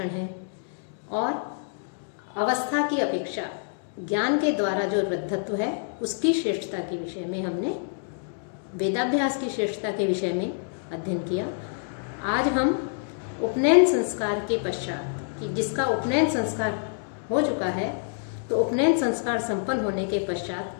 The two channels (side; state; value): right; silent; 60 dB below the other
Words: हैं और अवस्था की अपेक्षा ज्ञान के द्वारा जो वृद्धत्व है उसकी श्रेष्ठता के विषय में हमने वेदाभ्यास की श्रेष्ठता के विषय में अध्ययन किया। आज हम उपनयन संस्कार के पश्चात, कि जिसका उपनयन संस्कार हो चुका है, तो उपनयन संस्कार संपन्न होने के